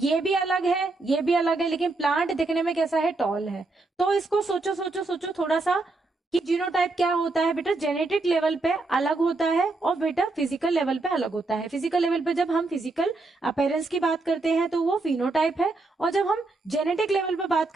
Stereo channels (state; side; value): quieter; left; 3.3 dB